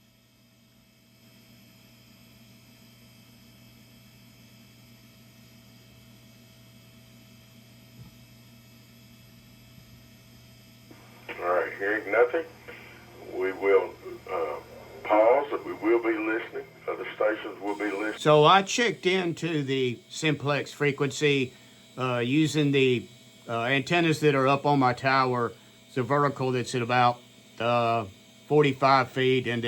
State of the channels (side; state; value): both; identical; correlation 1.00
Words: All right, hearing nothing, we will pause. We will be listening. Other stations will be listening. So I checked into the Simplex frequency using the antennas that are up on my tower. It's a vertical that's at about 45 feet, and